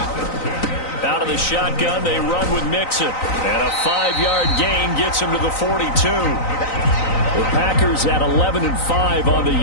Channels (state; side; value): late; right; 3.9 ms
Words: Out of the shotgun, they run with Mixon. And a 5-yard gain gets him to the 42. The Packers at 11-5 on the